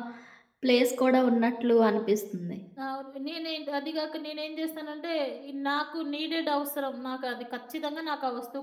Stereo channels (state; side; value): identical; both; correlation 1.00